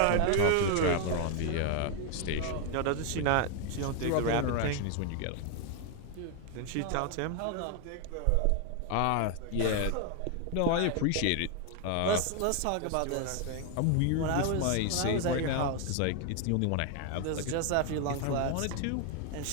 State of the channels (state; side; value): different; both; correlation 0.00